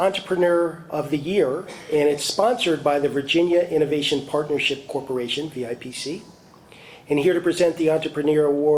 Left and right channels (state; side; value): identical; both; correlation 1.00